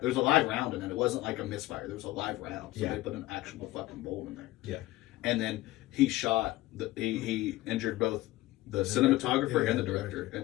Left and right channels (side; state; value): right; quieter; 17.9 dB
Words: There was a live round in it. It wasn't like a misfire. There was a live round. So they put an actual fucking bullet in there. Yeah. And then he shot, he injured both the cinematographer and the director.